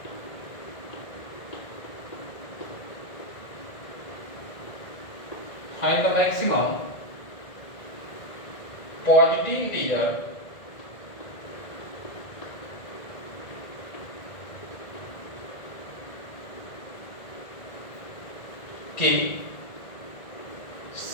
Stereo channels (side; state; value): right; late; 1.9 ms